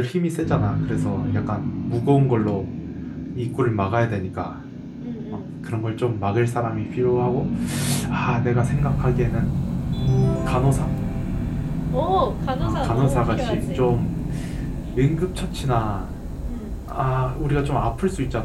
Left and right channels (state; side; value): identical; both; correlation 1.00